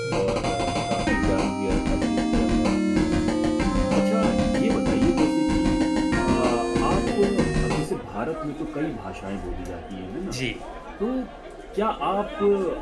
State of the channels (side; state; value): both; identical; correlation 1.00